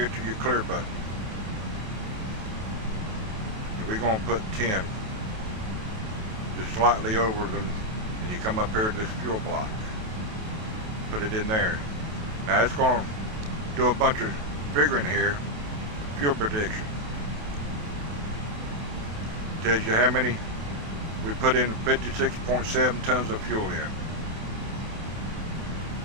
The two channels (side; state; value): left; late; 28 ms